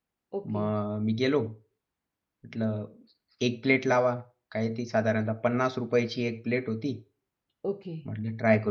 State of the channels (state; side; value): identical; both; correlation 1.00